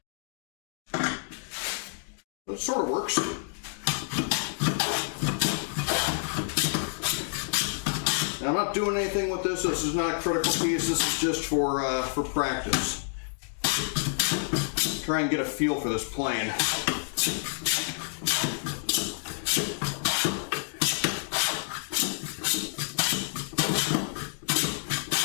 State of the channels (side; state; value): right; silent; digital silence